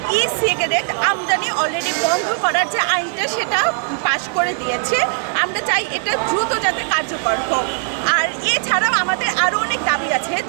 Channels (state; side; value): silent; left; 64 dB below the other